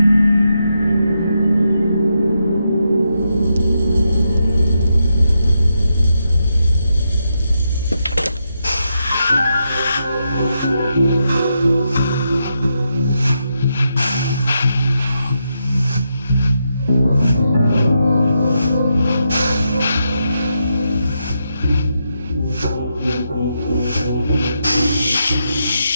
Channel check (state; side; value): inverted; both; correlation -0.83